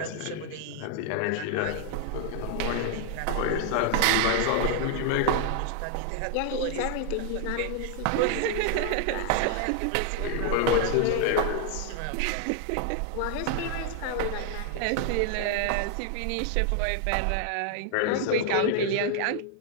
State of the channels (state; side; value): different; both; correlation 0.00